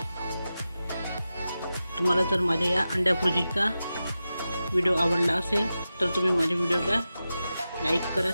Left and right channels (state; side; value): inverted; both; correlation -0.92